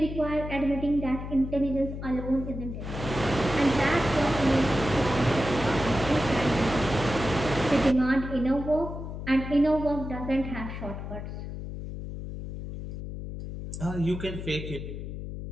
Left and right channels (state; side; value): noise; left; hum, 8 dB below the sound